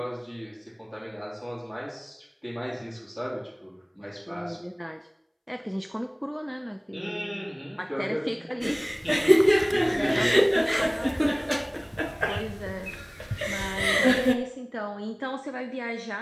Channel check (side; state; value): both; identical; correlation 1.00